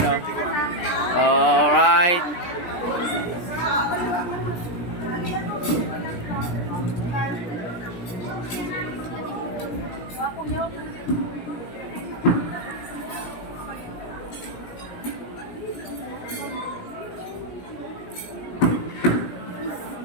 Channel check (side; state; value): right; late; 17 ms